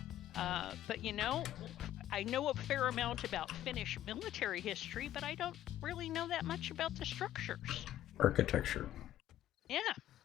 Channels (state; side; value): quieter; right; 12.7 dB